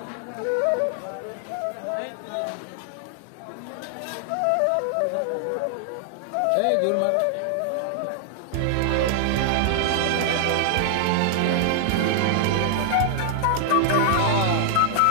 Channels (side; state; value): both; different; correlation 0.00